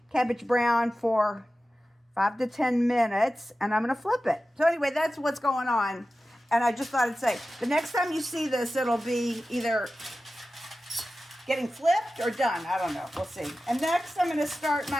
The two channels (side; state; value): both; normal; correlation 0.94